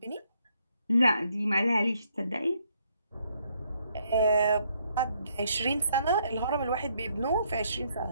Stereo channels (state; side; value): inverted; both; correlation -0.72